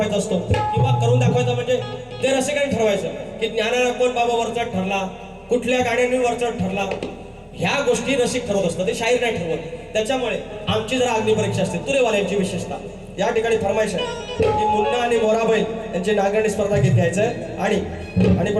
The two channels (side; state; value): both; identical; correlation 1.00